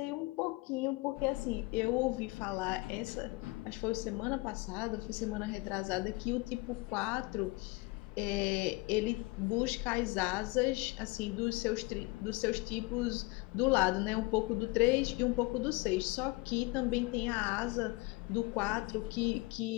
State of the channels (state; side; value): quieter; right; 24.6 dB